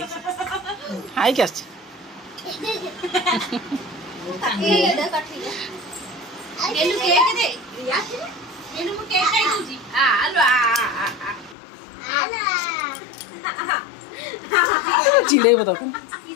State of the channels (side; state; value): right; drops out; at 11.6 s